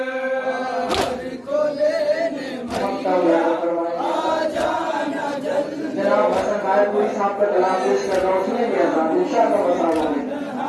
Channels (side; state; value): both; identical; correlation 1.00